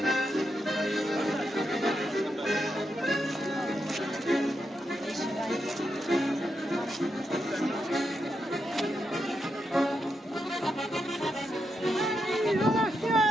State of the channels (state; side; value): normal; both; correlation 0.84